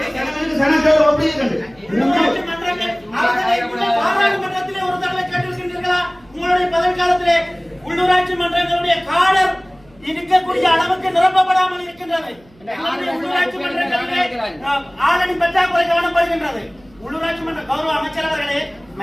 பாராளுமன்றத்திலே ஒரு தடவை கேட்டிருக்கின்றீர்களா? உங்களுடைய பதவி காலத்திலே உள்ளூராட்சி மன்றங்களுடைய காடர் இருக்கக்கூடிய அளவுக்கு நிரப்பப்படாமல் இருக்கின்றது. உள்ளூராட்சி மன்றங்களிலே ஆளணி பற்றாக்குறை கவனப்படுகின்றது. உள்ளூராட்சி மன்ற கௌரவ அமைச்சர் அவர்களே,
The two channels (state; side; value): noise; right; hum, 29 dB below the sound